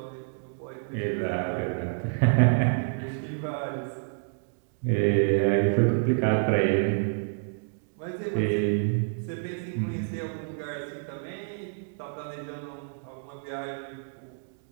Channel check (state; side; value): silent; left; digital silence